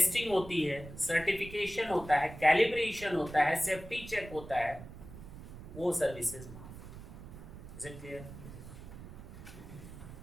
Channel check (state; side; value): noise; right; rumble, 14 dB below the sound